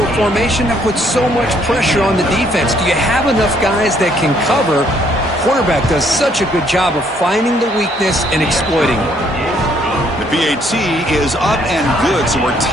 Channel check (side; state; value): both; normal; correlation 0.66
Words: a formation, that puts so much pressure on the defense. Do you have enough guys that can cover? Quarterback does such a good job of finding the weakness and exploiting it. The PAT is up and good, so we're